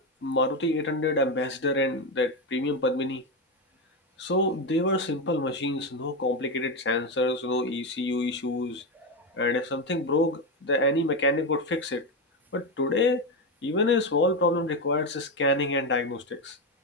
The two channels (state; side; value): normal; both; correlation 0.12